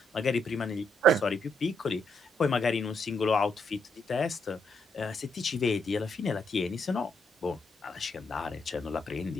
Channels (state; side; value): normal; both; correlation 0.76